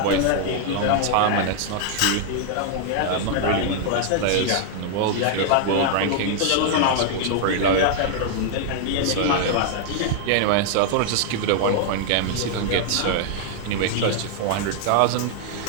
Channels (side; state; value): both; different; correlation 0.00